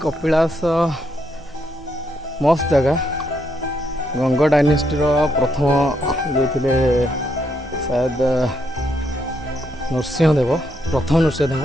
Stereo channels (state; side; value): normal; both; correlation 0.77